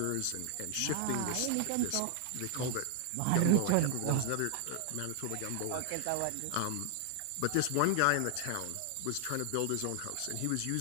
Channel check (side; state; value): both; different; correlation 0.00